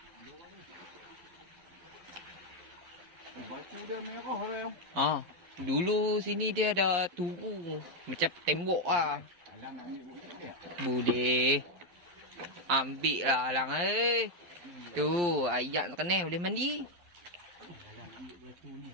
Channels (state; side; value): late; left; 12 ms